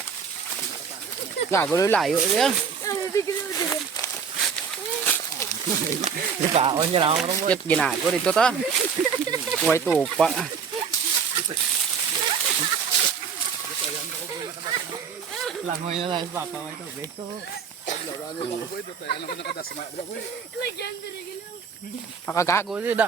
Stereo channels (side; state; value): left; quieter; 6.4 dB